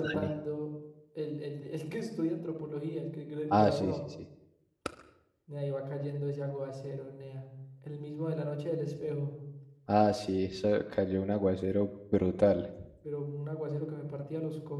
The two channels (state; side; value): identical; both; correlation 1.00